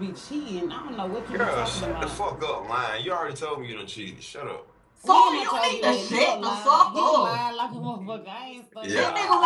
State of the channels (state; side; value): identical; both; correlation 1.00